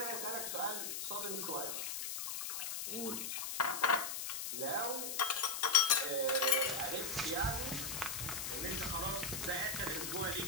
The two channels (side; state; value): left; noise; hiss, 3 dB below the sound